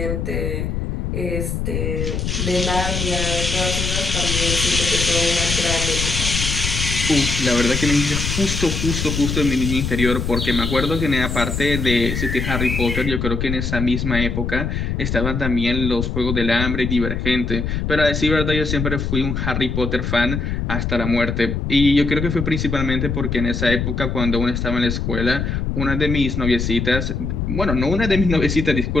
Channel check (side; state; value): left; noise; rumble, 2 dB below the sound